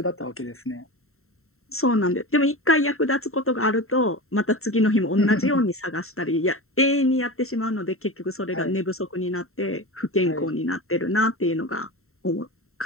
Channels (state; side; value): late; right; 0.63 ms